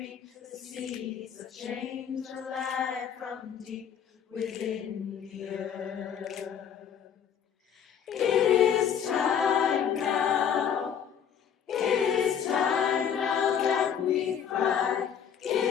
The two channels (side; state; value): right; quieter; 8.3 dB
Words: the seeds of change alive from deep within the earth. It is time now. It is time now that we cry. It